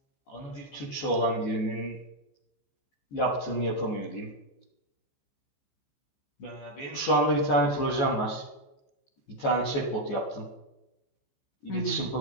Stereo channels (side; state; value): right; late; 14 ms